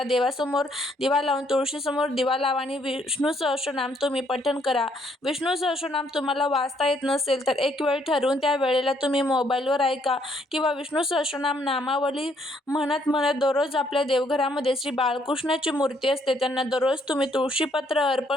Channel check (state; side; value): normal; both; correlation 0.69